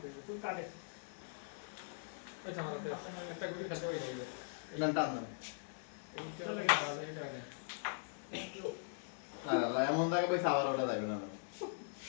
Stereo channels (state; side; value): silent; right; digital silence